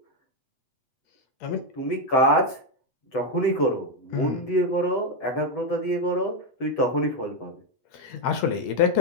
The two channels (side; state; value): right; late; 7.8 ms